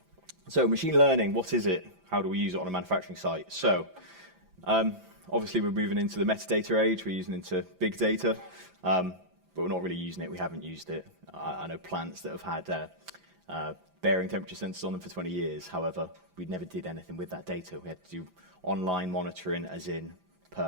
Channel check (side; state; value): left; late; 5.9 ms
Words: So machine learning, what is it? How do we use it on a manufacturing site? So obviously we're moving into the metadata age, we're using into big data, but we're not really using it, we haven't used it. I know plants that have had bearing temperature sensors on them for 20 years. However, we never did anything with that data. We had to do online monitoring, as in